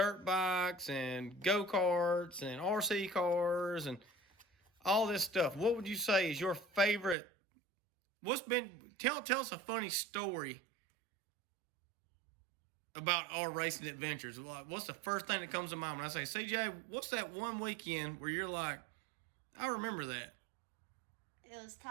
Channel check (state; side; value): drops out; left; at 7.2 s